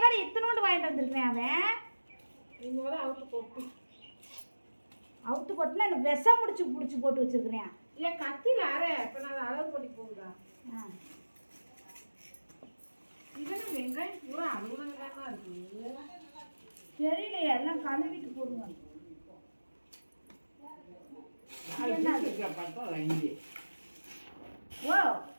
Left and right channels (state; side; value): inverted; both; correlation -1.00